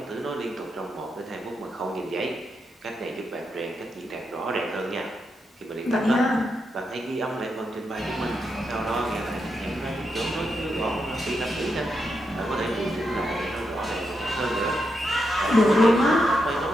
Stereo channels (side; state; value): both; normal; correlation 0.84